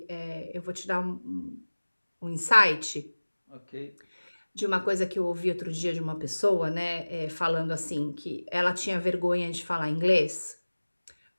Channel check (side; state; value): both; inverted; correlation -1.00